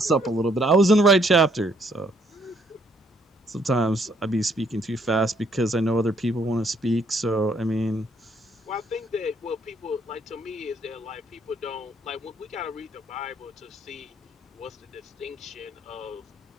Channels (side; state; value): both; normal; correlation 0.68